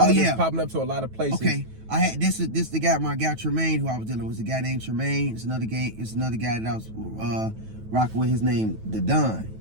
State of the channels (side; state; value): left; late; 9.2 ms